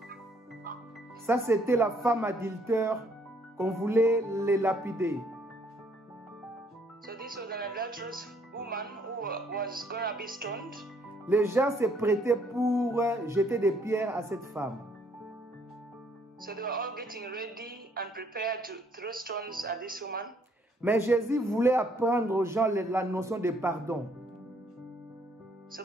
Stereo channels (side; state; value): both; normal; correlation 0.66